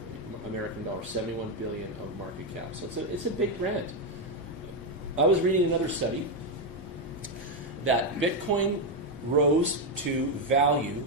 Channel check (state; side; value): normal; both; correlation 0.05